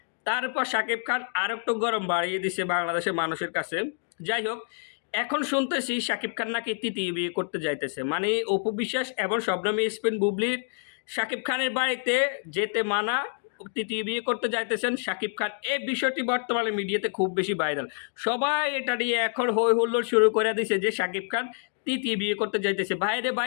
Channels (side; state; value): right; silent; 60 dB below the other